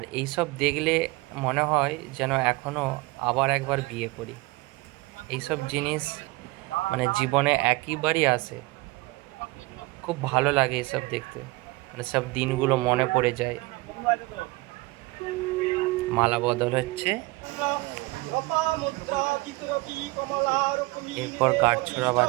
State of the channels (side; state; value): left; quieter; 22.5 dB